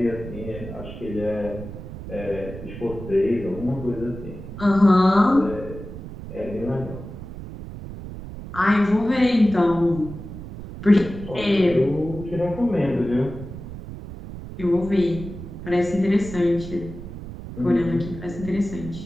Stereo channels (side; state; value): right; noise; rumble, 11 dB below the sound